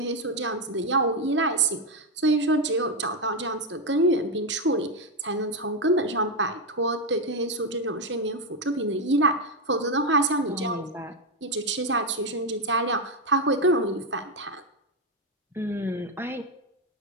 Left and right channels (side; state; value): both; normal; correlation 0.06